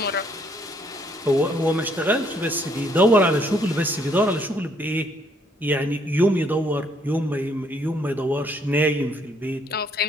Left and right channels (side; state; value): both; normal; correlation 0.68